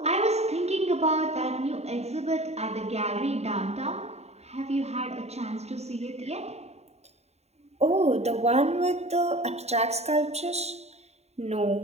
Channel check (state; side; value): late; left; 0.31 ms